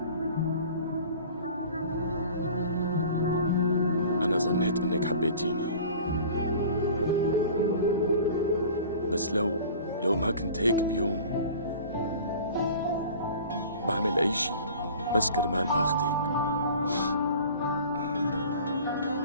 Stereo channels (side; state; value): both; inverted; correlation -0.43